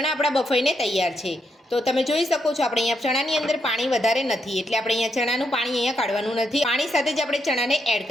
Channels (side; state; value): both; normal; correlation 0.80